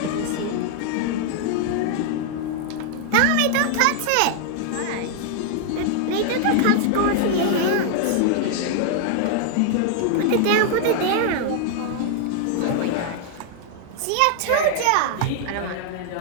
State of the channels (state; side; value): different; both; correlation 0.00